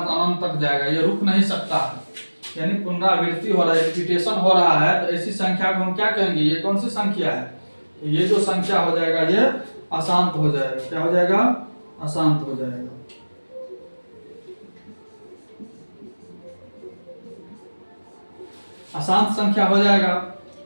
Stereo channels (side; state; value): both; inverted; correlation -1.00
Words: अनंत तक जाएगा, ये रुक नहीं सकता है, यानी पुनरावृत्ति हो रहा है, रिपीटेशन हो रहा है। तो ऐसी संख्या को हम क्या कहेंगे, ये कौन सी संख्या है, तो ये जो संख्या हो जाएगा ये अशांत हो जाएगा। क्या हो जाएगा, अशांत हो जाएगा। अशांत संख्या हो जाएगा।